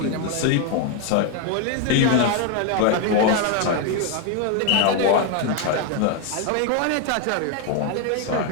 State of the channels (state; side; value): different; both; correlation 0.01